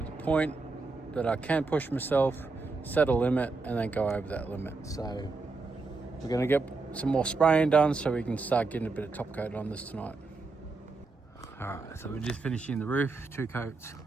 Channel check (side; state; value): left; quieter; 3.8 dB